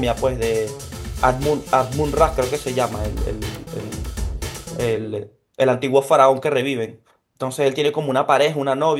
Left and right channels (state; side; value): identical; both; correlation 1.00